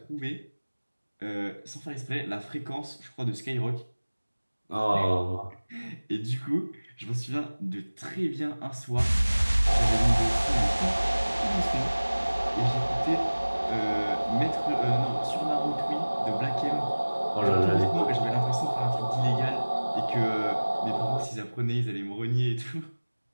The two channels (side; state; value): both; inverted; correlation -1.00